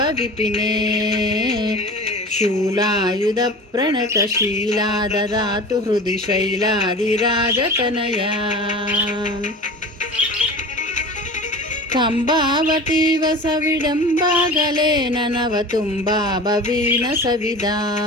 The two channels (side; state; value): both; normal; correlation 0.36